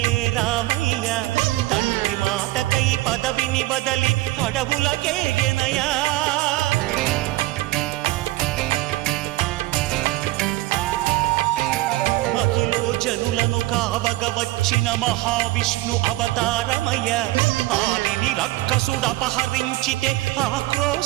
రామయ్య తండ్రి మాటకై పదవిని బదలి అడవులకేగెనయా మహిలో జనులను కావగ వచ్చిన మహావిష్ణు అవతారమయ్య ఆలిని రక్కసుడపహరించితే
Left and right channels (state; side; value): quieter; left; 18.2 dB